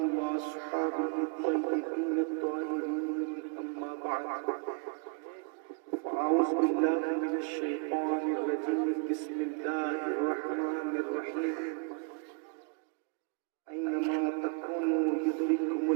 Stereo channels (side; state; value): left; quieter; 36.8 dB